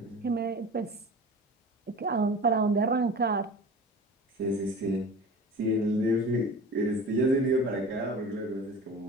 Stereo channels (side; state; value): both; normal; correlation 0.37